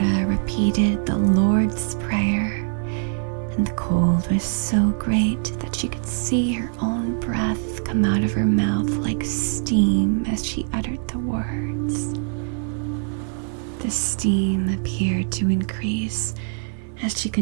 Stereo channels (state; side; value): silent; left; 63 dB below the other